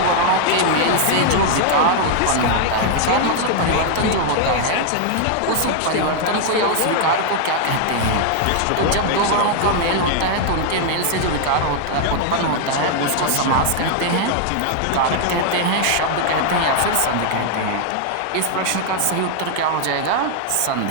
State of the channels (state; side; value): different; both; correlation 0.00